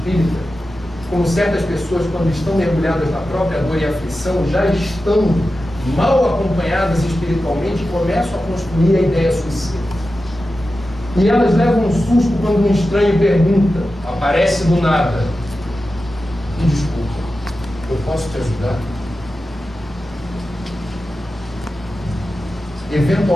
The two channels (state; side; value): normal; both; correlation 0.93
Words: como certas pessoas, quando estão mergulhadas na própria dor e aflição, já estão mal acompanhadas espiritualmente e começam a construir a ideia suicida. E elas levam um susto quando um estranho pergunta, aparece do nada: me desculpa, eu posso te ajudar?